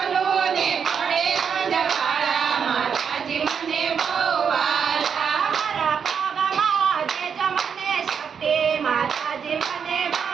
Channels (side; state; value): left; quieter; 6.9 dB